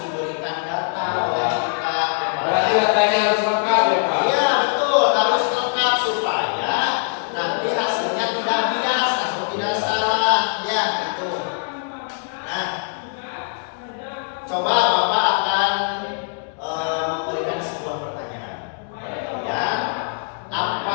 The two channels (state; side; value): silent; right; digital silence